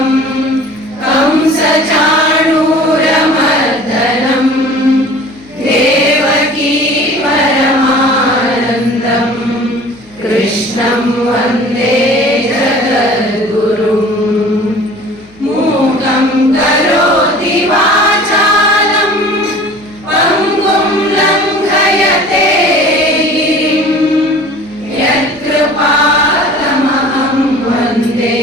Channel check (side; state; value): left; noise; hum, 28 dB below the sound